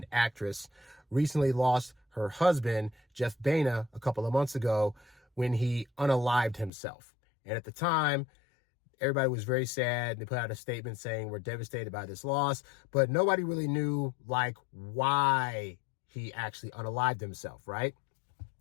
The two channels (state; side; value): drops out; right; at 6.7 s